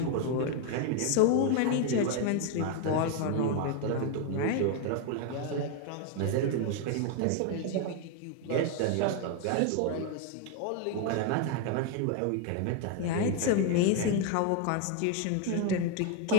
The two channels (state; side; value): different; both; correlation 0.00